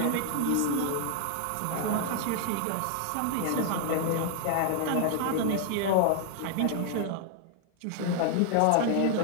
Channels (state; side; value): different; both; correlation 0.00